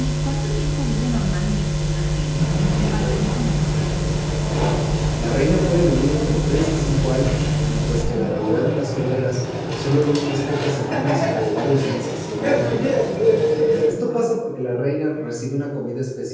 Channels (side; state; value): both; identical; correlation 1.00